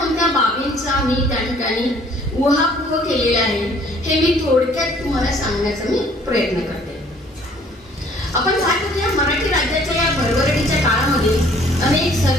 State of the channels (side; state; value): both; normal; correlation 0.57